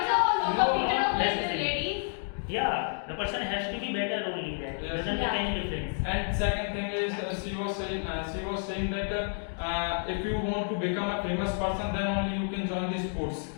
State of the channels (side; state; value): right; silent; 58 dB below the other